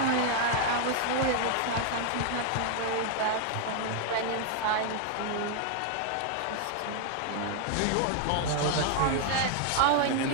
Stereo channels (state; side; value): different; both; correlation 0.00